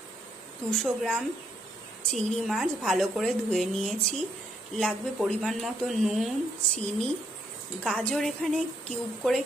200 গ্রাম চিংড়ি মাছ ভালো করে ধুয়ে নিয়েছি। লাগবে পরিমাণ মতো নুন, চিনি, গাজর এখানে কিউব করে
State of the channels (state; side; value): normal; both; correlation 0.73